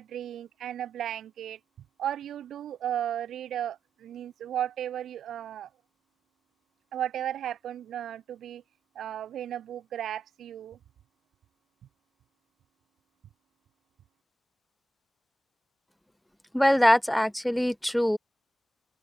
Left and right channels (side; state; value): both; normal; correlation 0.90